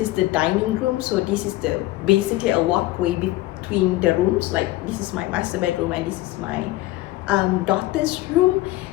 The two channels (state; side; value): quieter; right; 17.6 dB